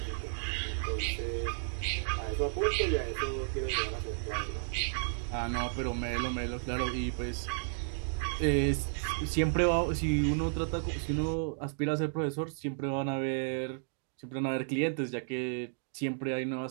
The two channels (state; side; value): silent; left; digital silence